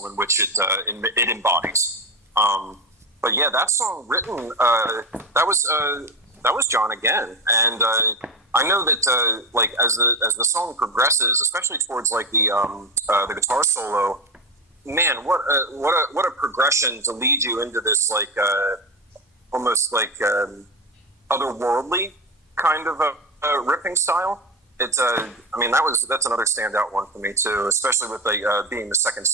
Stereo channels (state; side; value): normal; both; correlation 0.18